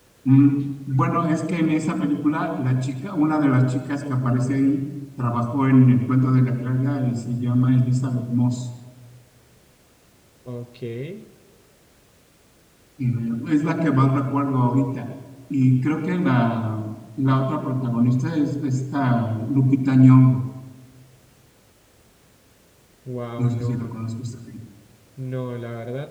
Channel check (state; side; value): identical; both; correlation 1.00